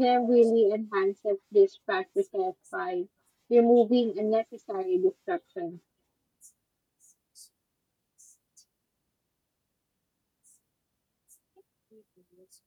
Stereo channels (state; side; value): identical; both; correlation 1.00